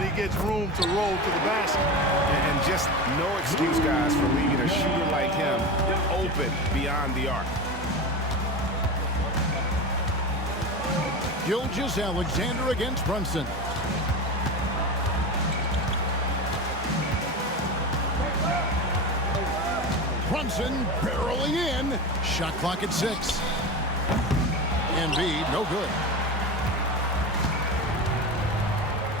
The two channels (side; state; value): both; normal; correlation 0.25